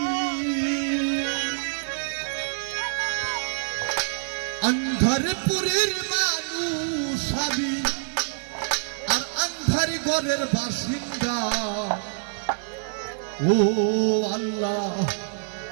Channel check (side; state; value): left; silent; digital silence